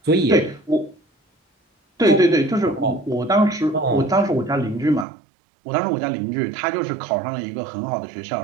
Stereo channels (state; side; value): drops out; left; at 5.1 s